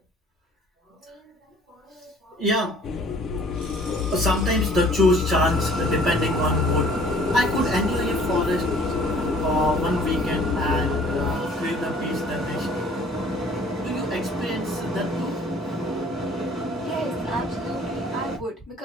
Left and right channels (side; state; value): both; normal; correlation 0.54